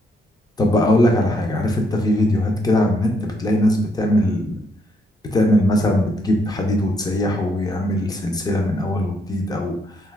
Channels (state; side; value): normal; both; correlation 0.74